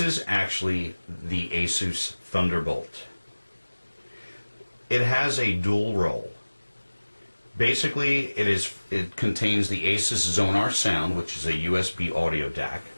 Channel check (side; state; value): both; inverted; correlation -1.00